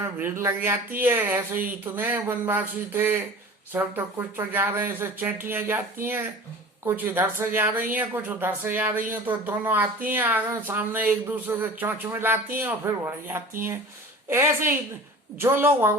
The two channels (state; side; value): normal; both; correlation 0.40